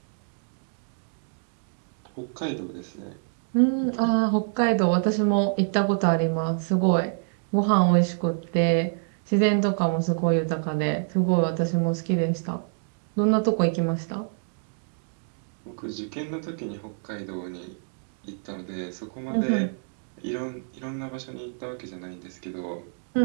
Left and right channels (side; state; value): left; silent; digital silence